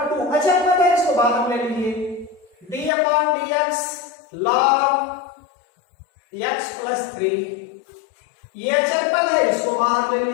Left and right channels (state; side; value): drops out; right; at 2.9 s